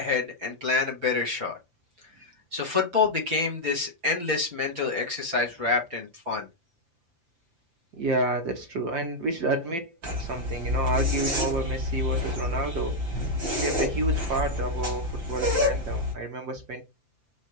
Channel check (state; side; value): late; left; 5.8 ms